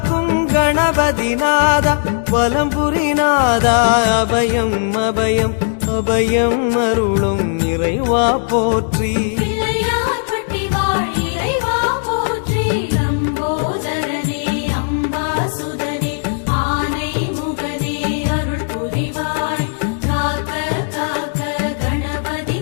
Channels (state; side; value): silent; right; digital silence